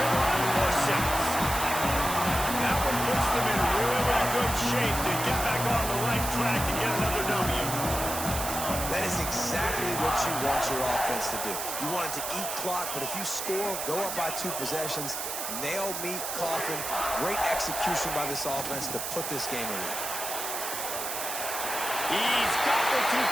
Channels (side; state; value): right; noise; hiss, 4 dB below the sound